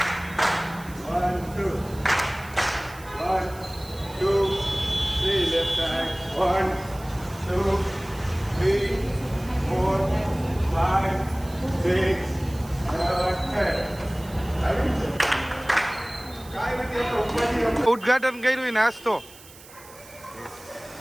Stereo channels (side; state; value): right; noise; hiss, 20 dB below the sound